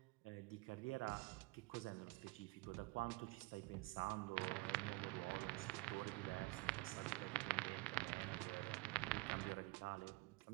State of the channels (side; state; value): left; quieter; 23.3 dB